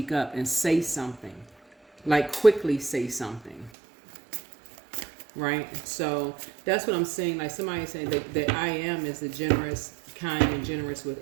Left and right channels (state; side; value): drops out; left; at 3.7 s